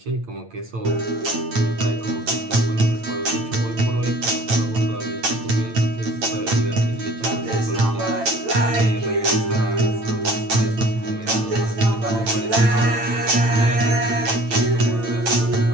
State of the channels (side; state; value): left; late; 8.9 ms